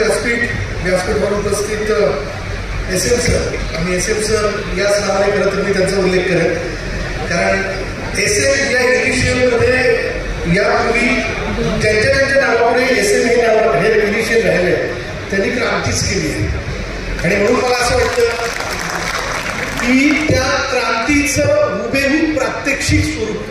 व्यासपीठावर उपस्थित SM सर आणि SM सर याच नावाने खरं तर मी त्यांचा उल्लेख करेन, कारण SM या इनिशियलमध्ये यापूर्वी ज्यांच्या नावापुढे SM हे इनिशियल राहिले त्यांनी क्रांतीच केली आहे. आणि म्हणून मला असं वाटतं की त्या क्रांतीचं हुबेहूब प्रात्यक्षिक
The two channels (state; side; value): identical; both; correlation 1.00